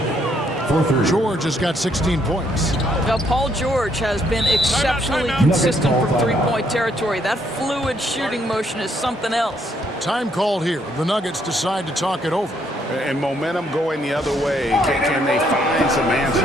George has got 16 points. Now, Paul George has been exceptionally consistent from three-point territory. That fluid shooting motion is something else. Time called here. The Nuggets decide to talk it over. And momentum going the other way. Can they find some answers?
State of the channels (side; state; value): both; normal; correlation 0.71